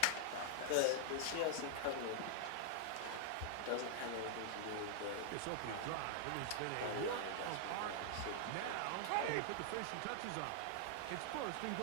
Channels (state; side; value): different; both; correlation -0.01